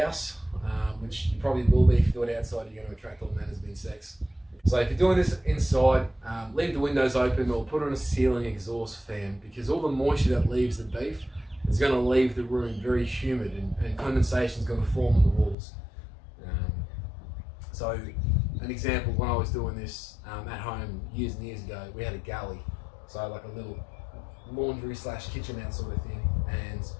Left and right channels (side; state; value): right; drops out; at 15.6 s